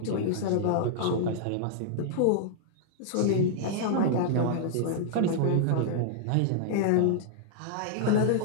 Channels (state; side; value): different; both; correlation -0.01